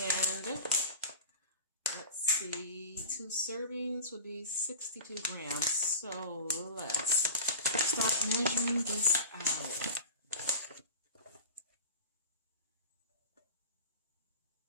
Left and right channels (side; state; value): both; inverted; correlation -0.34